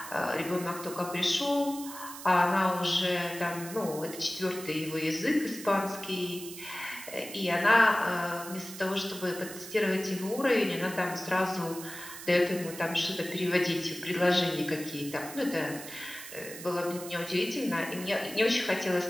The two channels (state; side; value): noise; right; hiss, 12 dB below the sound